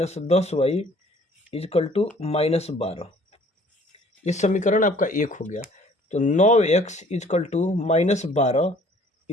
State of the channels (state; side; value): normal; both; correlation 0.55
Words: 10y is equal to -12, ये समीकरण आपका 1 हो गया। तो 9x इजकल टू -12,